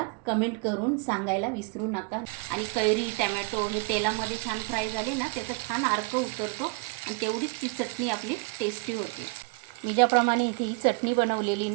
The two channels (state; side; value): quieter; left; 29.8 dB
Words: कमेंट करून सांगायला विसरू नका। आणि कैरी टमॅटो हे तेलामध्ये छान फ्राय झाले ना, त्याचा छान अर्क उतरतो आणि तेवढीच ती चटणी आपली टेस्टी होते। मी ज्याप्रमाणे इथे ही चटणी बनवलेली